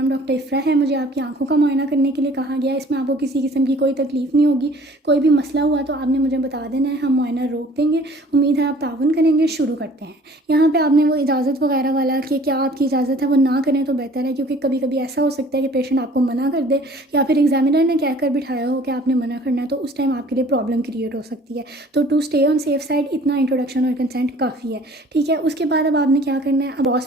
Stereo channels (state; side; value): normal; both; correlation 0.52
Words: डॉक्टर इफ़रा है, मुझे आपकी आंखों का मुआयना करने के लिए कहा गया है। इसमें आपको किसी किस्म की कोई तकलीफ़ नहीं होगी। कोई भी मसला हुआ तो आपने मुझे बता देना है, हम मुआयना रोक देंगे। उम्मीद है आप ताउन करेंगे। शुरू करते हैं। यहाँ पे आपने वो इजाज़त वगैरह वाला कि क्या आपकी इजाज़त है वो ना करें तो बेहतर है, क्योंकि कभी कभी ऐसा हो सकता है कि पेशेंट आपको मना कर दे, या फिर एग्जामिनर ने कहकर बिठाया हो कि आपने मना करना है, तो उस टाइम आपके लिए प्रॉब्लम क्रिएट हो सकती है। तो to stay on safe side इतना इंट्रोडक्शन और कंसेंट काफ़ी है। ठीक है, उसके बाद अब आपने क्या करना है, अब